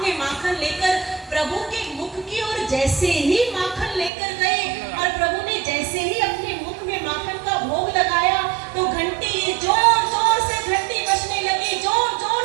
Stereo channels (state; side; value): drops out; left; at 4.1 s